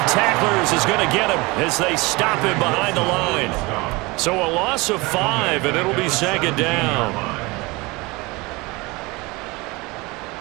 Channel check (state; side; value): quieter; left; 24.0 dB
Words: tacklers is going to get him as they stop him behind the line. So a loss of 5, and it'll be 2nd down.